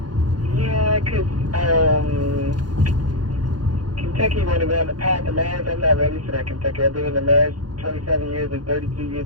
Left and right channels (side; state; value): left; late; 0.70 ms